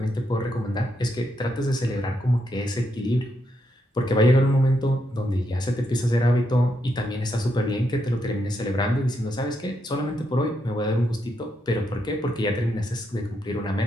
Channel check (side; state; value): both; normal; correlation 0.80